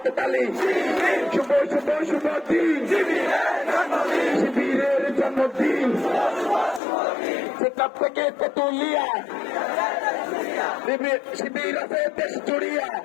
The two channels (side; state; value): right; drops out; at 6.8 s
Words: তালি, শুভ শুভ শুভ দিন, শিবিরের জন্মদিন। সেখান থেকে তেতুলিয়া, শিবির আছে দেশ জুড়িয়া।